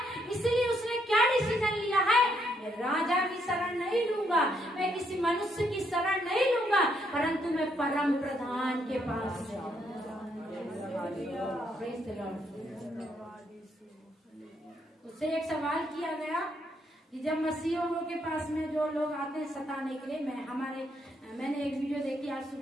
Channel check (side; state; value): both; normal; correlation 0.74